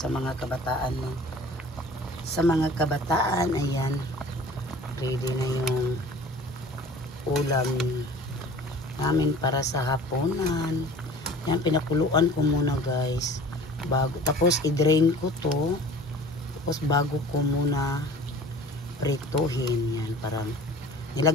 mga kabataan mo. Sa mga kabataan, ayan. Ready na yung ulam namin para sa hapunan. Yan. Pinakuluan ko muna guys. Tapos i-drain ko to. Tapos bago ko muna prituhin. Yan. Parang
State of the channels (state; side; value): normal; both; correlation 0.45